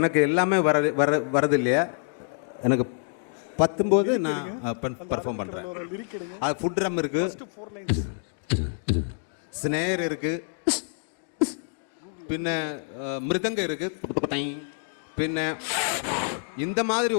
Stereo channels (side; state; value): right; silent; digital silence